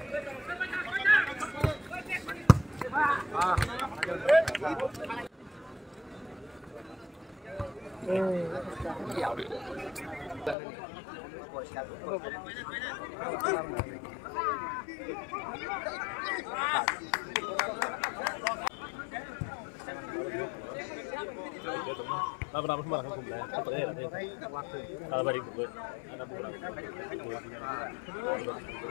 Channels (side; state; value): right; drops out; at 10.6 s